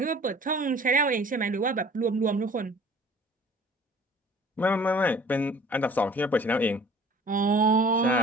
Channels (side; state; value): both; normal; correlation 0.49